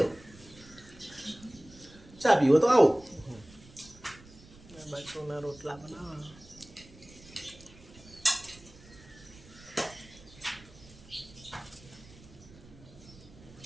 चा पीओ तो आओ। बच्चों ना रोटला बनावा।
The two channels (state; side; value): noise; right; rumble, 21 dB below the sound